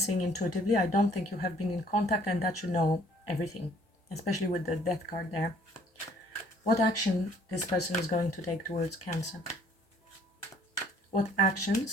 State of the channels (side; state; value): both; normal; correlation 0.58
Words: intuitively. I don't think you have been in contact and that you know everything, especially with the death card there. What action this person is going to take towards Cancer? What